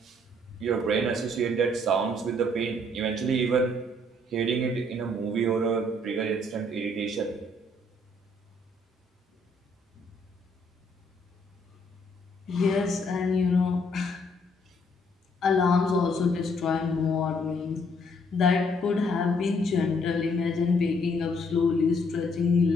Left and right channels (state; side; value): normal; both; correlation 0.67